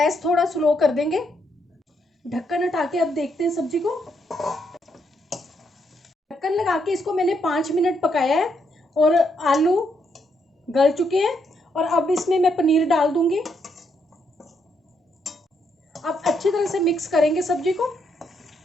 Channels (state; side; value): normal; both; correlation 0.76